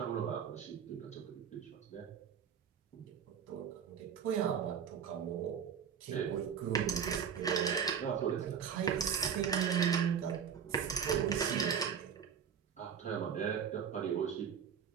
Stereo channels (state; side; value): quieter; left; 7.6 dB